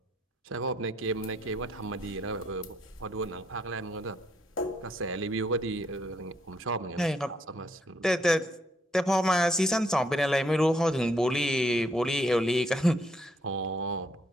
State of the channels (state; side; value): normal; both; correlation 0.72